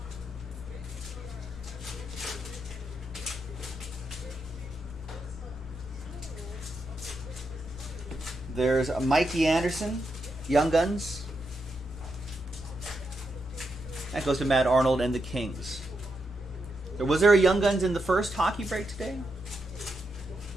There's Mikey Anderson, Young Guns. That goes to Matt Arnold and the Kings. Was there a Young Guns in the first hockey break today?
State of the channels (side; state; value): both; normal; correlation 0.83